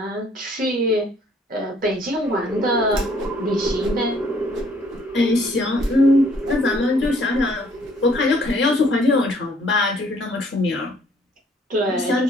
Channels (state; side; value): normal; both; correlation 0.62